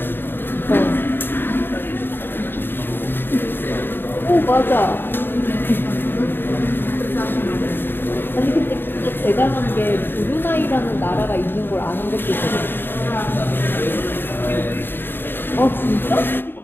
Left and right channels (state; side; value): late; right; 0.099 ms